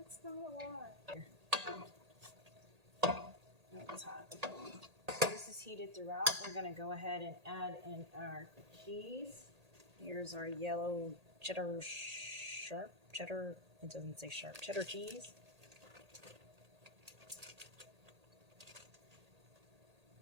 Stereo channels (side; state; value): left; late; 1.8 ms